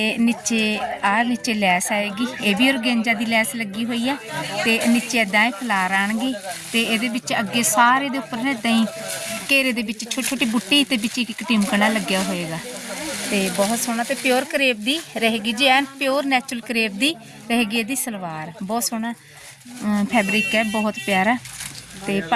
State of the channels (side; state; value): both; identical; correlation 1.00